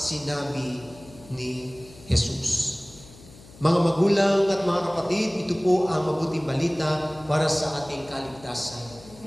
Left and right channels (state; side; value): noise; left; hum, 21 dB below the sound